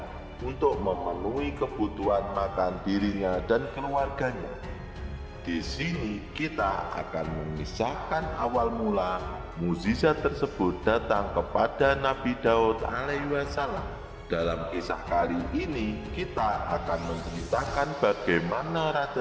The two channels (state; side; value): identical; both; correlation 1.00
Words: untuk memenuhi kebutuhan makan dirinya dan keluarganya. Di sini kita akan mengisahkan awal mula mukjizat tersebut datang kepada Nabi Daud alaihissalam. Dalam kisah kali ini kita akan menceritakan bagaimana